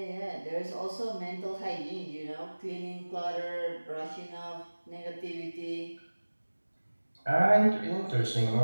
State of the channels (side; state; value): both; inverted; correlation -1.00